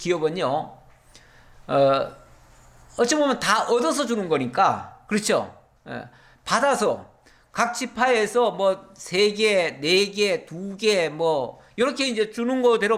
어찌 보면 다 얻어서 주는 거니까, 그렇죠? 받아서 각 지파에서 뭐 3개, 4개, 2개 뭐 이렇게 이제 주는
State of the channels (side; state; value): both; identical; correlation 1.00